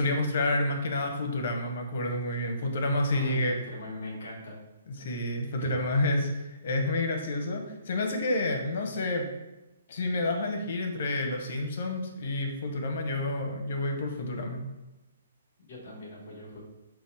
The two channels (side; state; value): both; inverted; correlation -0.63